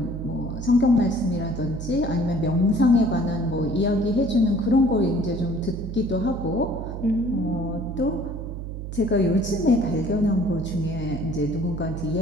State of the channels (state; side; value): noise; right; hum, 7 dB below the sound